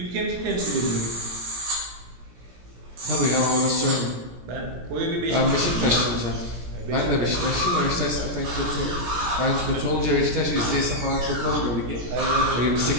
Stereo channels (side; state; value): left; late; 17 ms